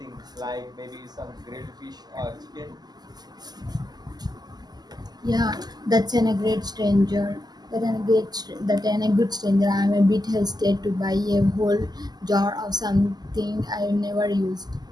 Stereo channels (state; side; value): late; left; 0.20 ms